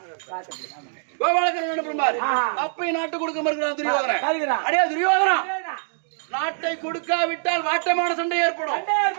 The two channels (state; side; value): silent; left; digital silence